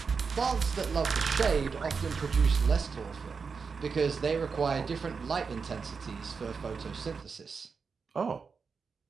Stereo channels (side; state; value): left; quieter; 5.4 dB